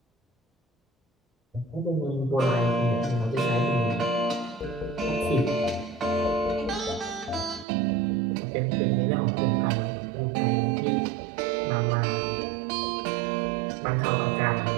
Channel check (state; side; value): drops out; left; at 7.7 s